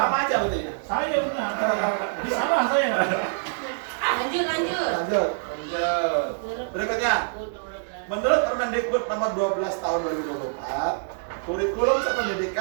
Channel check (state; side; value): silent; left; 61 dB below the other